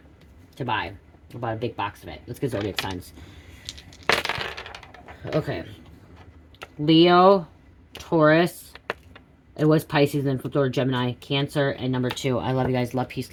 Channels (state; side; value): identical; both; correlation 1.00